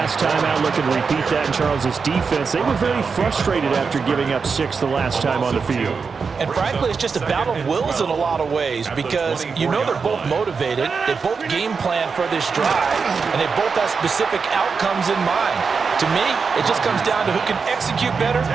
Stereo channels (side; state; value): left; quieter; 5.3 dB